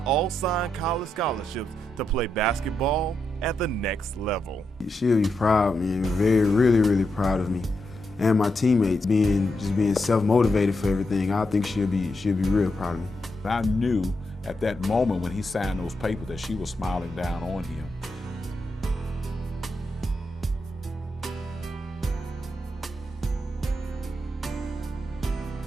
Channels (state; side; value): normal; both; correlation 0.84